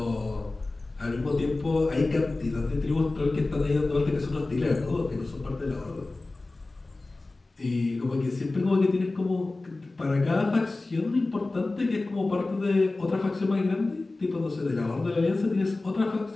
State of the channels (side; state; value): right; quieter; 3.2 dB